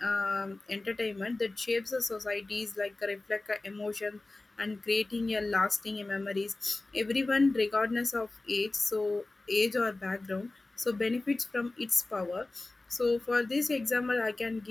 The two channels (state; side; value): quieter; right; 3.0 dB